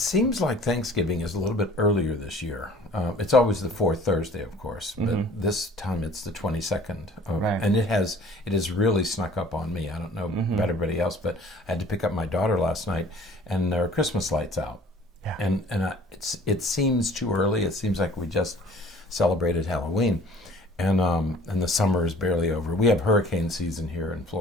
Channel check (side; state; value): both; normal; correlation 0.50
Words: like Thanksgiving is a little bit earlier this year. It's always the fourth Thursday, of course, but this time it's the 22nd, and it has really snuck up on me. I don't know about everybody else, but I had to pick up my daughter last night, and there are Christmas lights out. Yeah. And it seems too early. It seems like we just celebrated Halloween, and the summer is barely over. We have hurricane season here in